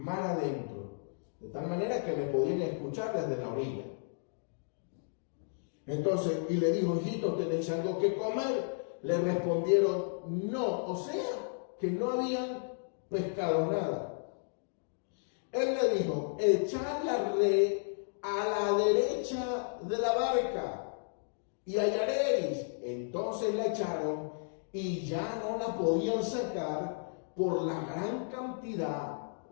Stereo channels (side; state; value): right; silent; digital silence